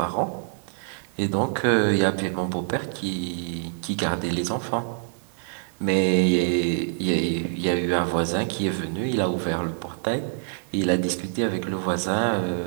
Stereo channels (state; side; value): silent; left; digital silence